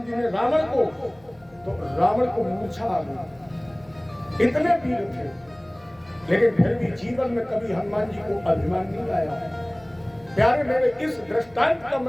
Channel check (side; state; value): left; noise; hum, 28 dB below the sound